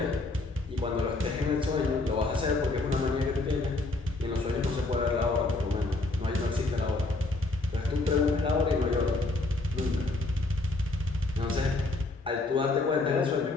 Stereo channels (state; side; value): quieter; right; 3.2 dB